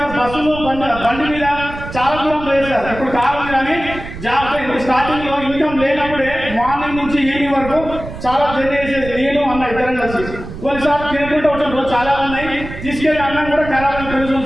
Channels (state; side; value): noise; right; rumble, 11 dB below the sound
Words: బస్సులు బండి మీద చాలా దూరం లేదు సార్. ఇప్పుడు కారు కానీ జాబ్ స్టార్టింగ్ లో ఇన్కమ్ లేనప్పుడే మార్నింగ్ నుంచి ఈవినింగ్ వరకు చాలా జర్నీ చేసేది. నేను అన్న ఇద్దరం కలిసి కొన్నిసార్లు తినుకుంటూ వచ్చాను. చాలా ఉన్నాయి. తీసుకెళ్ళి అన్నం కూడా ఖరాబ్ అని తెలుసు